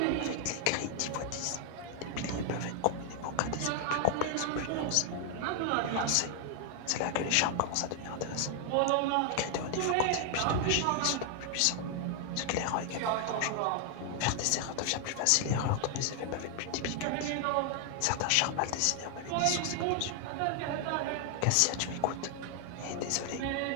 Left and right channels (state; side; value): different; both; correlation 0.00